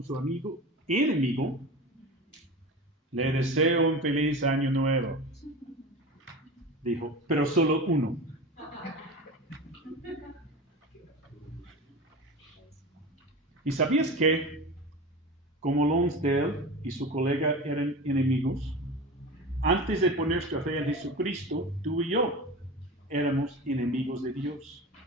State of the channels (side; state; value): both; normal; correlation 0.30